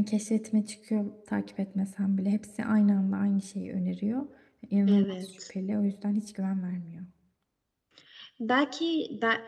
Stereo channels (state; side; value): identical; both; correlation 1.00